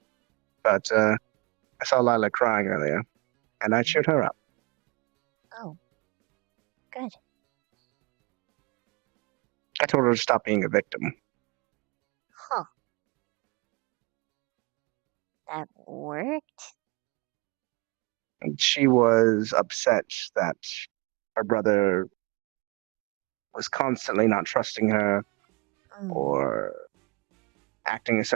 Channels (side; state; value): left; quieter; 25.7 dB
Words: But I saw Lila crying earlier, and I cheered her up. Oh. Good. I told her to stop being a victim. Huh. That worked? And she was upset that her brother was constantly not trusting her or acting a